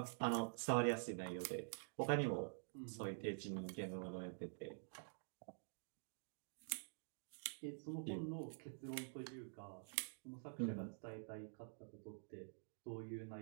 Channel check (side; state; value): left; silent; digital silence